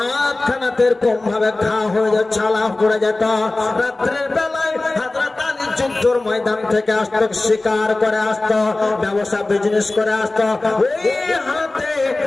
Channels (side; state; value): right; quieter; 3.0 dB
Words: খানাতের কম ভাবে খাওয়া হয়ে যায়, ছালা পড়ে যেত। রাত্রের বেলায় হযরত আলী যুদ্ধের ময়দান থেকে আসতো, শিকার করে আসতো, ব্যবসা বিজনেস করে আসতো। ওই হাতে